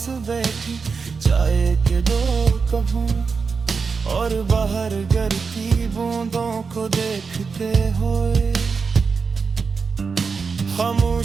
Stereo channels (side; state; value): left; quieter; 5.1 dB